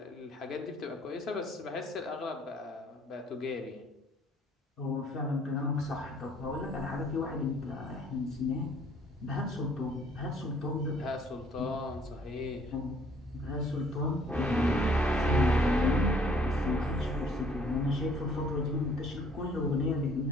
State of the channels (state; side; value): normal; both; correlation 0.60